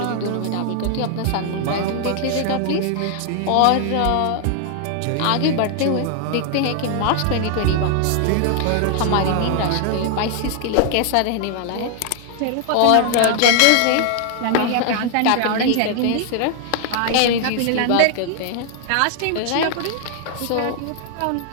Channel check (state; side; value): different; both; correlation 0.00